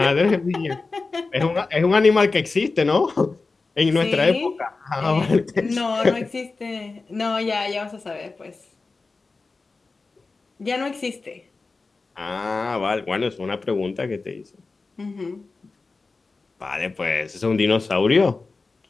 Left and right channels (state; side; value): quieter; right; 3.9 dB